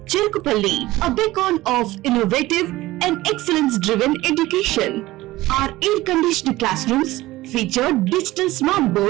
Cherkupalli, a beacon of innovative and excellence-driven education. Our air-conditioned classrooms feature digital smart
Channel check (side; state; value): left; quieter; 17.7 dB